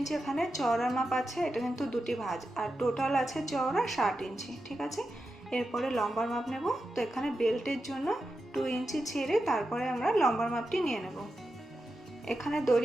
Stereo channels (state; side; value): normal; both; correlation 0.89